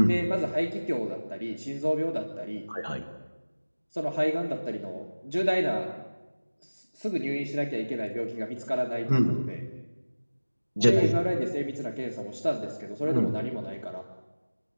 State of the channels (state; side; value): inverted; both; correlation -1.00